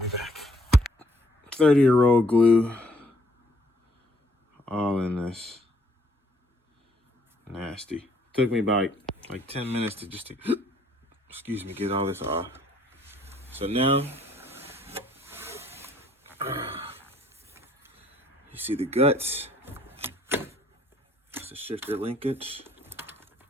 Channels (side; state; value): both; normal; correlation 0.64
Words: back. 30-year-old glue all in this. Nasty. Took me about like 10 minutes to just excuse me, get all this off. So now you see the guts. That's the shifter linkage.